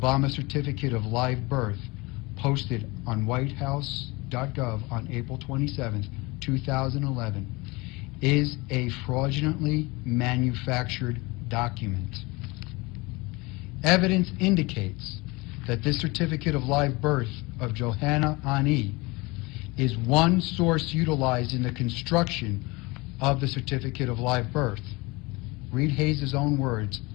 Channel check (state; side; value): quieter; right; 24.4 dB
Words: Certificate of Live Birth, posted on whitehouse.gov on April 27, 2011, is a fraudulently manufactured document. Evidence indicates that this Certificate of Live Birth of Johanna Ani is one source utilized in the construction of the Certificate of Live Birth. Reed Hayes' own words,